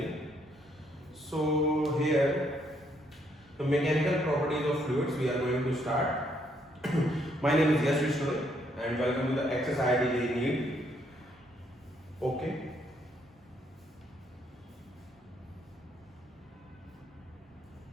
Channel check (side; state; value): both; normal; correlation 0.71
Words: So here the mechanical properties of fluids we are going to start. My name is Yash Vishnu and welcome to the XSID NEET. Okay.